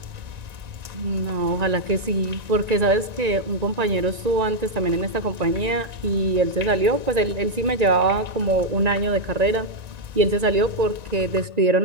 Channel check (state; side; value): late; left; 1.9 ms